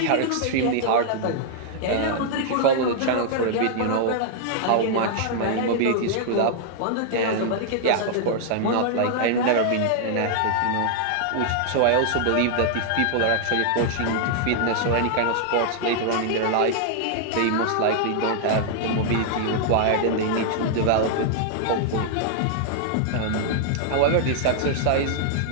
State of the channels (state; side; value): different; both; correlation -0.01